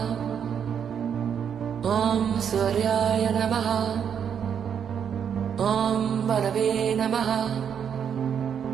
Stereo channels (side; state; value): left; quieter; 7.9 dB